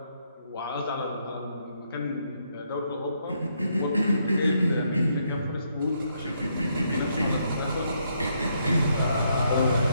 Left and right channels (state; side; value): inverted; both; correlation -0.75